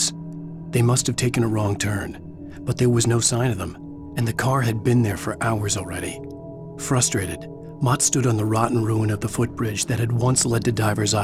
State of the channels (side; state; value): both; identical; correlation 1.00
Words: They must have taken a wrong turn, but there was no sign of them, and the car had been there for hours already. Frustrated, Mott stood on the rotten ruin of the footbridge that had once led to Diver's